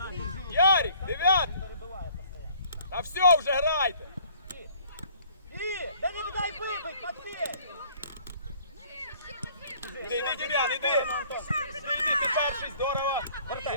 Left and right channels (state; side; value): inverted; both; correlation -0.57